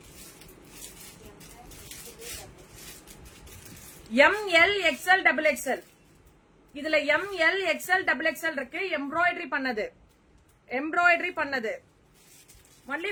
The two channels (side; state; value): both; identical; correlation 1.00